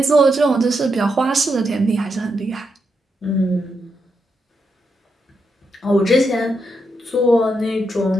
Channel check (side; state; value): both; normal; correlation 0.82